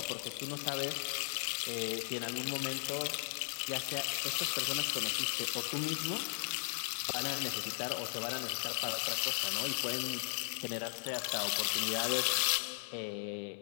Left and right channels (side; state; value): right; silent; 53 dB below the other